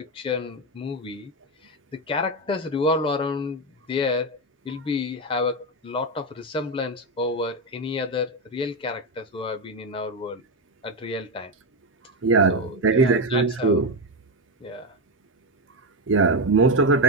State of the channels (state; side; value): normal; both; correlation 0.10